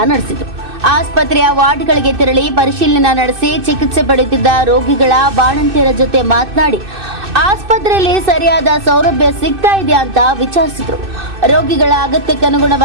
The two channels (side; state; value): left; late; 2.6 ms